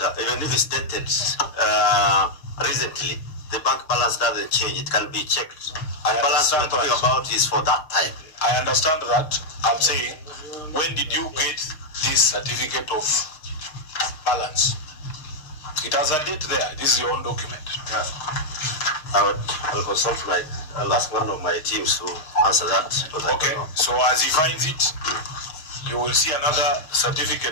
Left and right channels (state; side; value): late; right; 6.6 ms